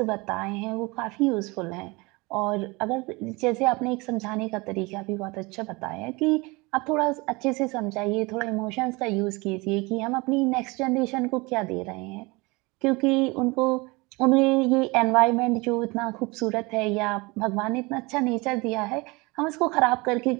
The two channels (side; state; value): left; quieter; 25.2 dB